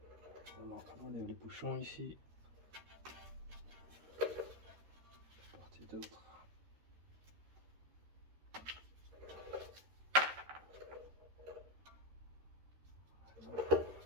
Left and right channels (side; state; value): left; late; 13 ms